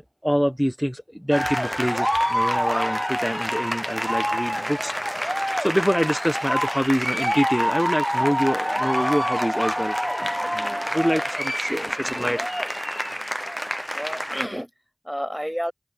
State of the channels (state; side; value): identical; both; correlation 1.00